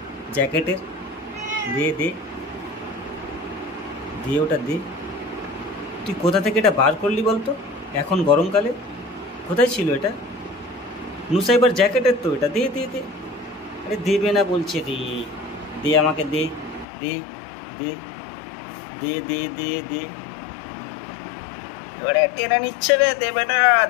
জ্যাকেটের, দে দে দে, ওটা দে। তুই কোথা থেকে এটা বার করলি বলতো এখন গরমকালে? কোথায় ছিল এটা? নুসাইবার জ্যাকেটের তো এটা, দে দে দে। আরে দেবে না বলছে, রে দে আমাকে, দে দে দে দে দে দে দে। ওরে টেনে নিচ্ছে রে, দেবে না,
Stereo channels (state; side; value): drops out; right; at 16.9 s